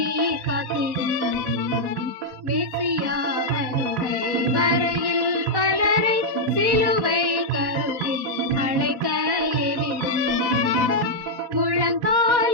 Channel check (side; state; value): left; late; 11 ms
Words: காத்திடும். மேசியா வருகை வரையில் பலரை சிலுவை கருவில் அழைக்க ஏவிடும்.